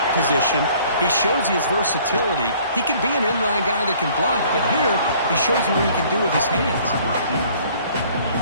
position. He shows you his versatility. He can be an inline guy that can block, but here he shows you what he can do with his hands.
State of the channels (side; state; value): both; inverted; correlation -0.56